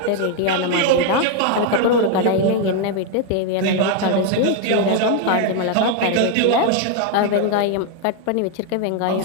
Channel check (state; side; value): different; both; correlation 0.00